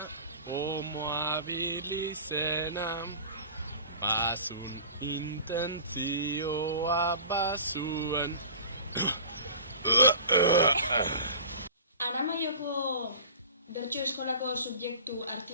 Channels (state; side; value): inverted; both; correlation -0.39